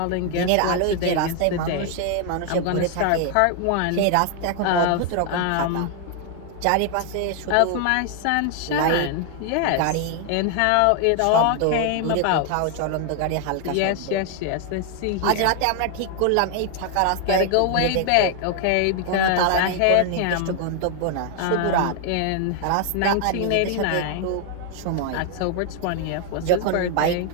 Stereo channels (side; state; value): both; different; correlation 0.00